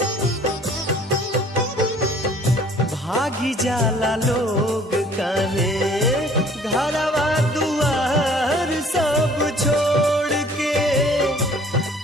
भागी जाला लोग काहे घरवा दुआर सब छोड़ के।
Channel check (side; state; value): both; normal; correlation 0.54